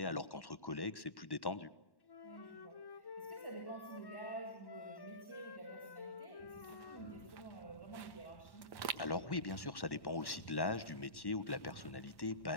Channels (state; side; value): late; right; 1.1 ms